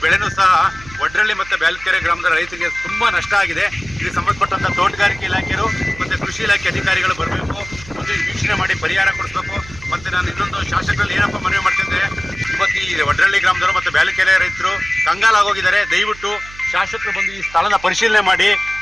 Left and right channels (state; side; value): noise; right; hum, 18 dB below the sound